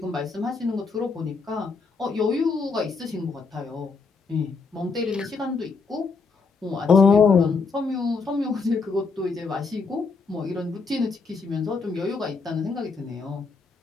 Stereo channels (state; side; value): quieter; right; 4.5 dB